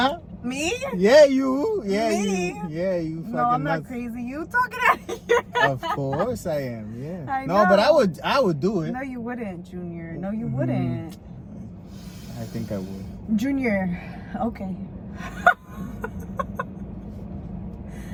Me? Yeah, you. Yeah, Me? you. Yeah, you fucking No, I'm not nuts. crazy. You talking out of here. Of course I am. Yeah. I No, but know. I would do it. No, you wouldn't, Junior. No, you wouldn't. I think I would. Junior. Okay.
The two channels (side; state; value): both; identical; correlation 1.00